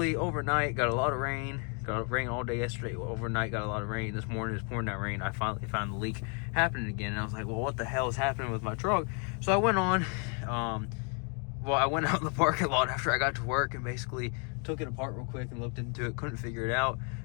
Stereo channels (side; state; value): right; quieter; 38.4 dB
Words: overnight, got a lot of rain. Got rain all day yesterday. Overnight, got a lot of rain. This morning, it's pouring that rain. I finally found the leak happening again. And I was like, well, what the hell is happening with my truck? So I went on. I went out in the parking lot after I got to work and basically took it apart real quick and looked into it. Couldn't figure it out.